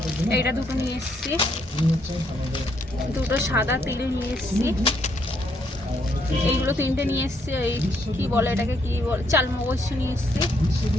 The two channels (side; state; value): both; normal; correlation 0.73